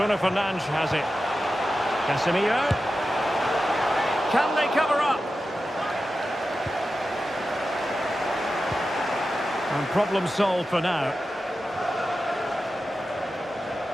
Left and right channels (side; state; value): both; normal; correlation 0.92